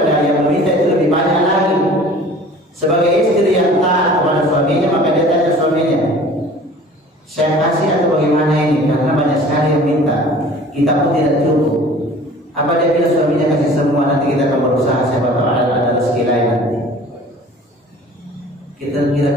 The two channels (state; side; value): normal; both; correlation 0.46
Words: yang meminta itu lebih banyak lagi. Sebagai istri yang taat kepada suaminya, maka dia tanya suaminya, saya kasih atau bagaimana ini? Karena banyak sekali yang minta, kita pun tidak cukup. Apa dia bilang suaminya kasih semua, nanti kita akan berusaha siapa tahu ada rezeki lain nanti. Kita